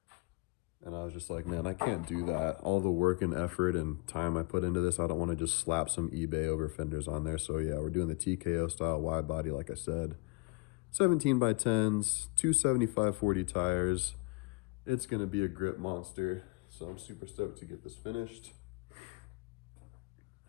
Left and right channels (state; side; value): quieter; right; 26.5 dB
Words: and I was just like, man, I can't do that. All the work and effort and time I put into this, I don't want to just slap some eBay over fenders on there. So yeah, we're doing the TKO style wide body, like I said. 17 by 10s, two 75/40 tires. It's gonna be a grip monster. So I'm super stoked to get this finished.